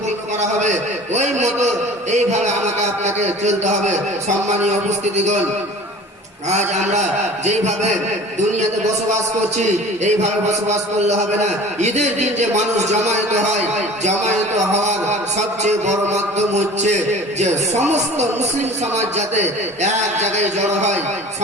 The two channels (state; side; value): normal; both; correlation 0.42